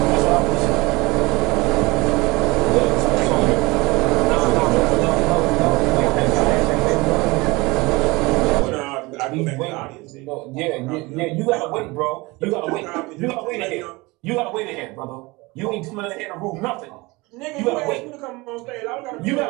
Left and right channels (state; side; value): quieter; left; 23.4 dB